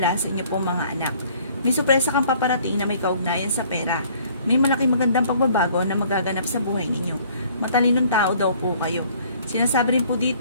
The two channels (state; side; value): inverted; both; correlation -0.57